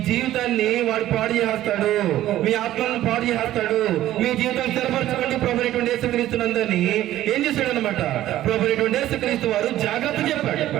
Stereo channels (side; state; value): left; quieter; 13.8 dB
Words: జీవితాన్ని వాడు పాడు చేస్తాడు, మీ ఆత్మలను పాడు చేస్తాడు. మీ జీవితాన్ని స్థిరపరచుకోండి ప్రభువైనటువంటి యేసుక్రీస్తునందని ఏం చేశాడు అనమాట? ప్రభువైనటువంటి యేసుక్రీస్తు వారు జాగ్రత్త చెప్పాడు.